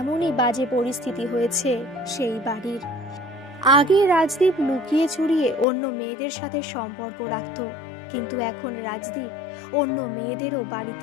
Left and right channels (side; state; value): right; drops out; at 5.7 s